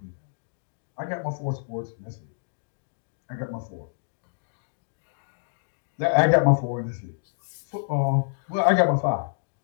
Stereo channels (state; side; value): silent; right; digital silence